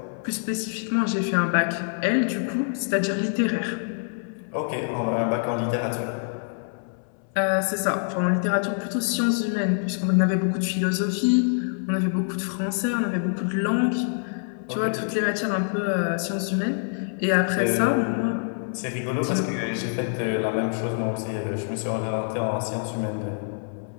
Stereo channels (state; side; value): silent; right; 61 dB below the other